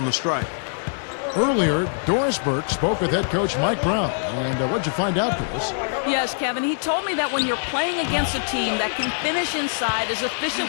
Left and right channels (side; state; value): right; silent; digital silence